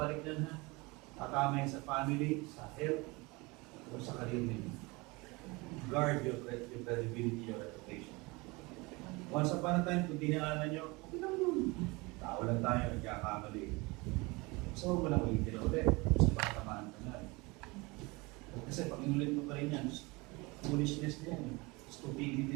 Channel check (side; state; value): left; quieter; 25.1 dB